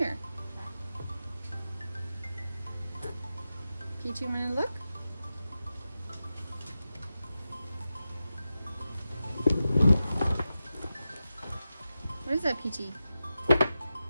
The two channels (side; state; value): both; inverted; correlation -0.92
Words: Peachy, wanna look? What is that, Peachy?